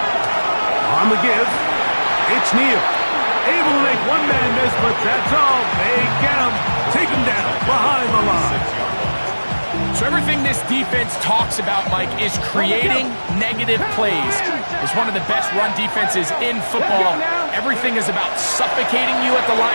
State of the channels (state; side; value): inverted; both; correlation -1.00